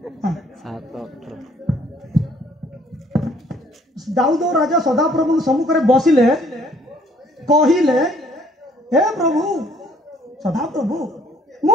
हां 7:18 दाऊद राजा सदा प्रभु सम्मुख रे बसिले कहिले हे प्रभु सदा प्रभु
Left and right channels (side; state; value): both; normal; correlation 0.61